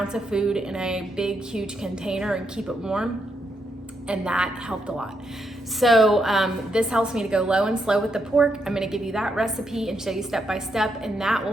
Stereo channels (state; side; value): normal; both; correlation 0.80